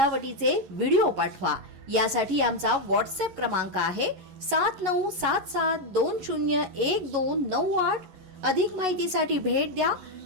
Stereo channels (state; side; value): late; left; 11 ms